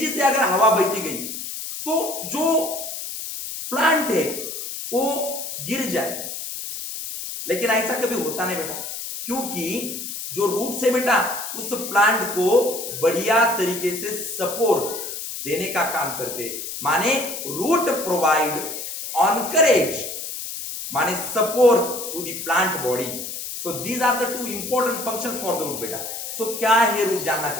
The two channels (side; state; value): left; noise; hiss, 7 dB below the sound